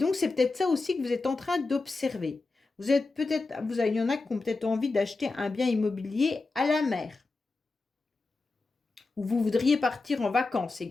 c'est peut-être ça aussi que vous êtes en train d'observer. Vous êtes peut-être, il y en a qui ont peut-être envie d'acheter un bien immobilier à la mer. Ou vous voudriez partir en vacances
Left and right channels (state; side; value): quieter; right; 3.6 dB